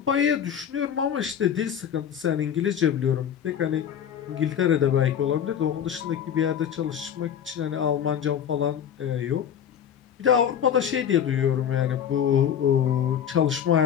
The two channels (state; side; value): quieter; right; 8.9 dB